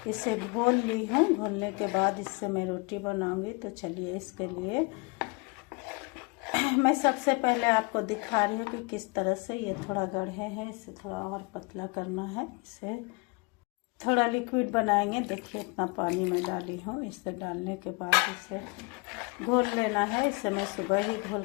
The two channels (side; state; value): right; quieter; 29.4 dB